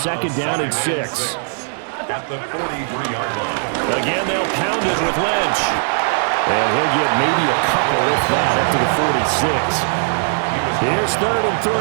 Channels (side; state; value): left; silent; digital silence